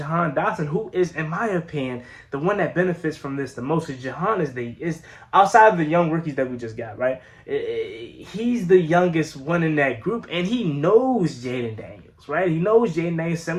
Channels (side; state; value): both; identical; correlation 1.00